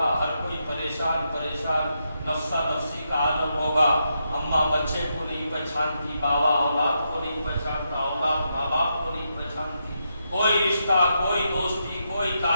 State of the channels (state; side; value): inverted; both; correlation -0.83